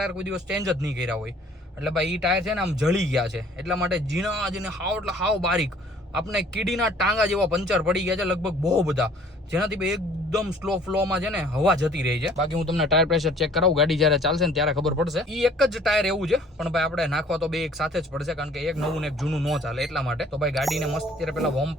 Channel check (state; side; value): normal; both; correlation 0.55